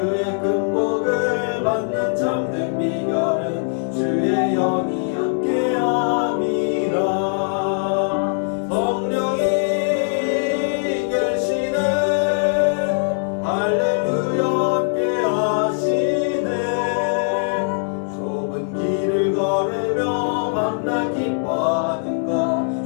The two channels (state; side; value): silent; right; digital silence